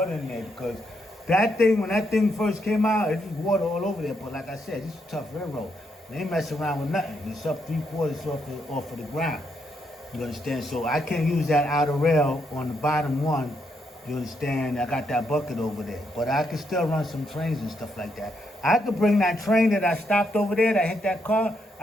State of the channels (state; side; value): normal; both; correlation 0.78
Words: in there because that thing, when that thing first came out, it was water all over there. But like I said, this is a tough railroad. They ain't messing around with nothing. It's up 3/4 off of the ground. You understand? So I can't use that outer rail on the bottom one. You understand? I got that bucket over there. But I can still run some trains and stuff like that. I could bring that train that I stopped over there, that hit that car.